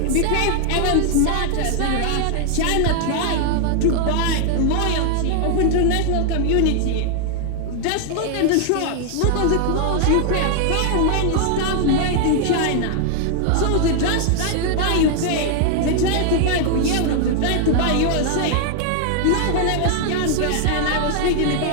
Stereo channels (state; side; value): different; both; correlation 0.00